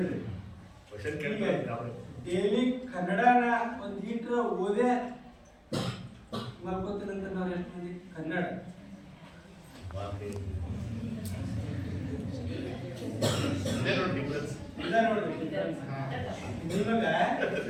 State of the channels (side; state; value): both; identical; correlation 1.00